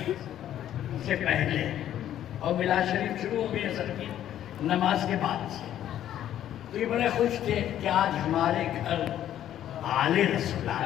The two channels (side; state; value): right; quieter; 11.4 dB